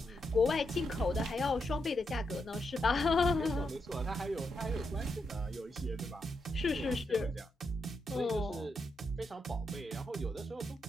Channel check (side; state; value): both; normal; correlation 0.83